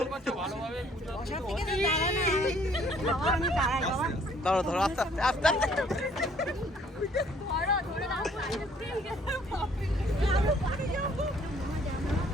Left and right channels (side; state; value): both; normal; correlation 0.61